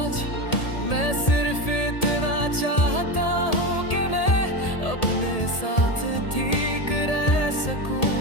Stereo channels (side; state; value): right; late; 1.8 ms